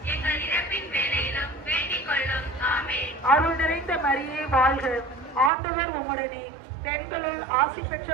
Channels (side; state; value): left; drops out; at 5.5 s